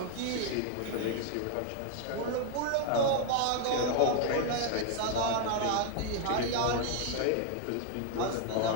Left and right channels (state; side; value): different; both; correlation 0.00